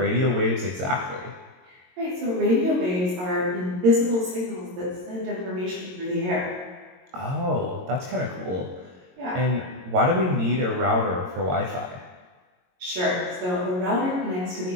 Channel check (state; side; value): late; left; 22 ms